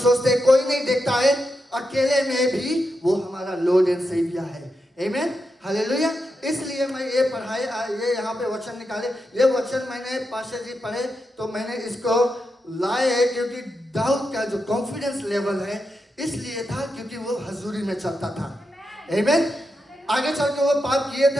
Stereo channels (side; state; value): both; normal; correlation 0.86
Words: हैं कोई नहीं देखता है, अकेले में भी वो हमारा लॉर्ड एंड सेवियर है। आमीन। हालेलुया। इसलिए मैं ये ये यहाँ पे वचन निकाले, ये वचन मैंने पास्टर जी पढ़े तो मैंने इसको लाए है क्योंकि दाऊद का जो कॉन्फिडेंस लेवल है इसलिए था क्योंकि वो हजूरी में चलता था। आमीन। आगे चल के वो पाप किए